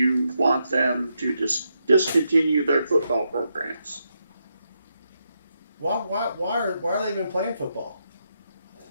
want them to discontinue their football programs. why are they even playing football?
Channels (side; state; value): both; inverted; correlation -0.82